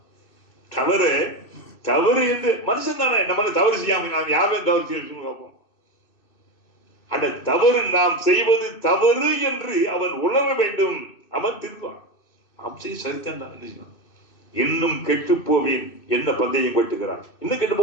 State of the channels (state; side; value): late; right; 2.6 ms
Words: தவறு என்று மனுஷன் தானே, நம்ம தவறு செய்யாம நாம் யாரும் தவறு செய்ய பார்ப்போம். அந்த தவறு நாம் செய்வது தவறு என்று அவன் உணர வேண்டும். அவன் திருவான். நாம் செய்ய சரித்தான் என்ன செய்யணும். இன்னும் கெட்டு போவேன் என்ன பந்தயம் கட்டுகிறான், இன்னும் கெட்டு